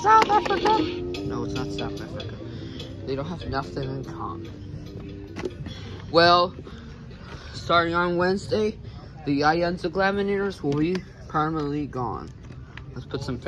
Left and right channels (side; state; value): both; identical; correlation 1.00